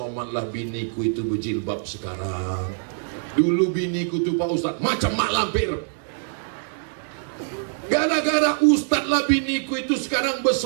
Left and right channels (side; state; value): left; silent; 63 dB below the other